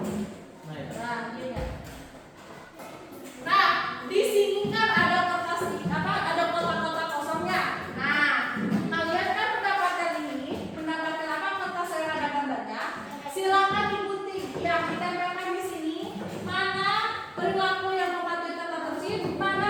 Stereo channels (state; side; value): identical; both; correlation 1.00